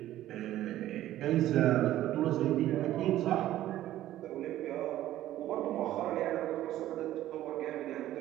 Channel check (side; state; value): left; quieter; 13.8 dB